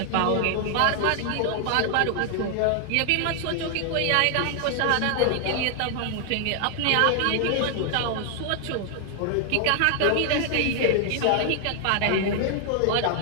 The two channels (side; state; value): both; different; correlation 0.00